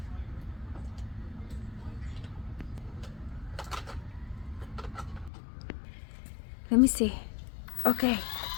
Let me see. Okay.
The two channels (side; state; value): right; drops out; at 5.3 s